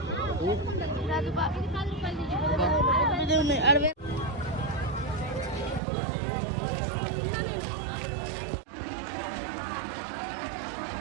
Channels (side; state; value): left; drops out; at 5.8 s